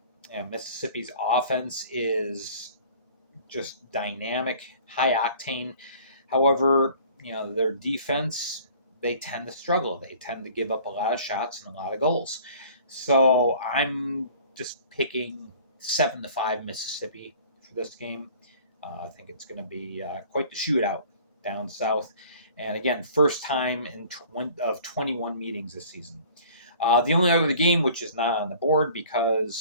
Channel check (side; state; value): both; inverted; correlation -0.50